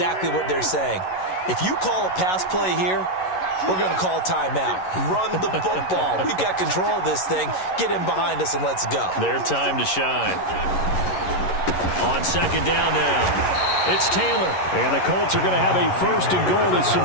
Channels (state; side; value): late; right; 11 ms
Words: what they're saying. If you call a pass play here, we're going to call a timeout. Run the football. We've got control of this thing. Get in behind us and let's go. Their time to shine. On 2nd down now, it's Taylor. And the Colts are going to have a 1st and goal. There's